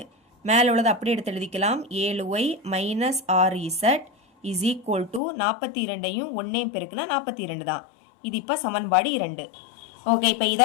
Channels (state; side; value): drops out; right; at 5.2 s